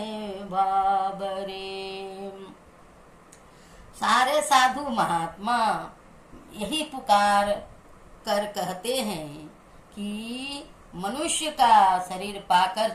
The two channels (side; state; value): both; identical; correlation 1.00